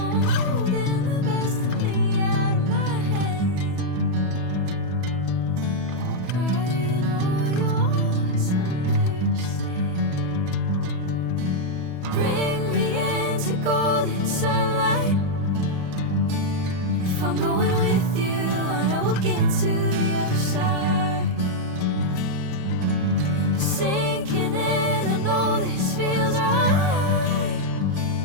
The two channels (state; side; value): late; left; 34 ms